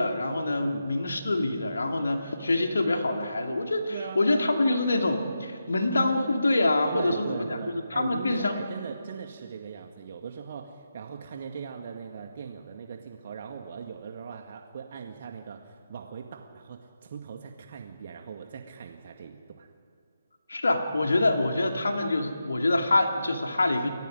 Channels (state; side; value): inverted; both; correlation -0.89